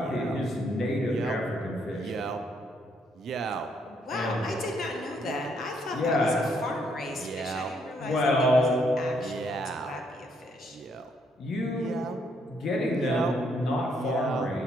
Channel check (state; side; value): normal; both; correlation 0.72